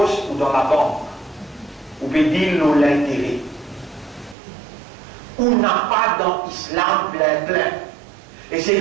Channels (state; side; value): drops out; left; at 4.4 s